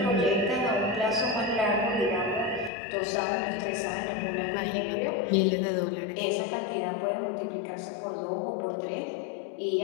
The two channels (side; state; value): right; drops out; at 2.7 s